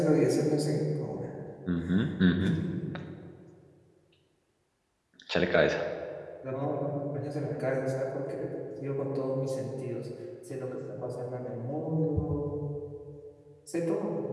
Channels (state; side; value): identical; both; correlation 1.00